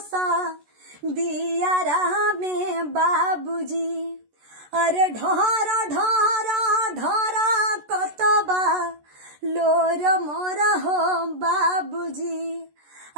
दियारा में बाबूजी। अरे ढोर ढोर ढोर कतबा लोर मोर हो बाबूजी,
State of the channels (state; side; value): late; left; 14 ms